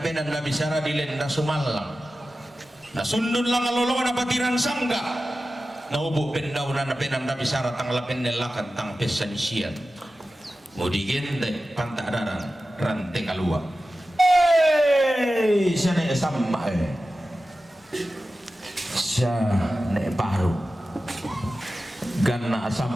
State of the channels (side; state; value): both; normal; correlation 0.94